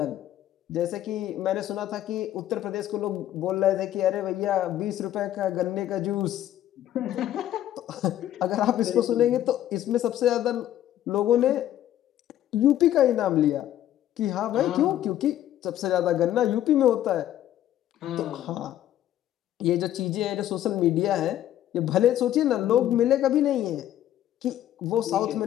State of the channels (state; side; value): quieter; right; 12.3 dB